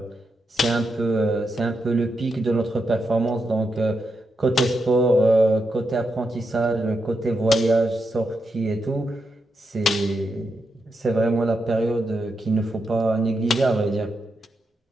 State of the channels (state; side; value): normal; both; correlation 0.85